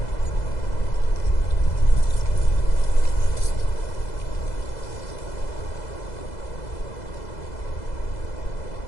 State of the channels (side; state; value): right; late; 2.0 ms